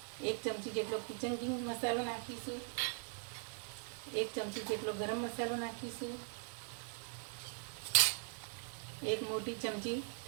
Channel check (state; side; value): silent; left; 50 dB below the other